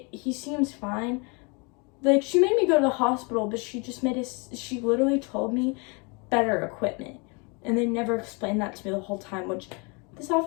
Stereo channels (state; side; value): quieter; right; 31.7 dB